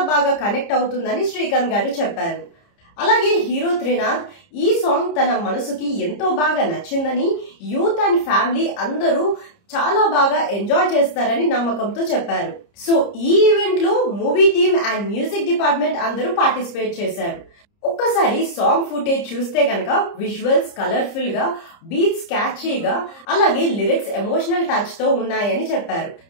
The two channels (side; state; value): right; late; 30 ms